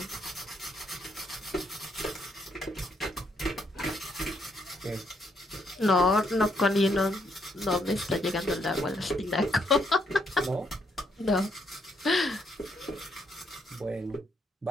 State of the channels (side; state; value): both; normal; correlation 0.73